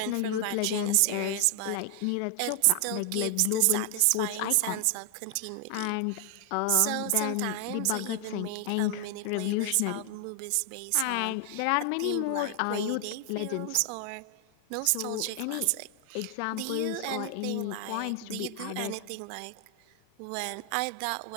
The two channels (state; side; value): different; both; correlation 0.00